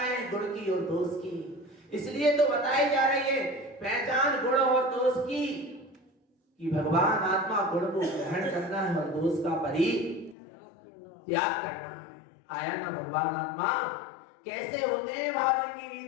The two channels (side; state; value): right; drops out; at 10.4 s